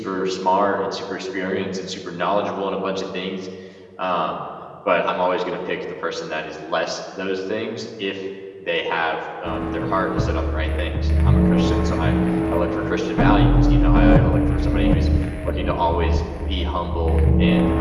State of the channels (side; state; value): both; identical; correlation 1.00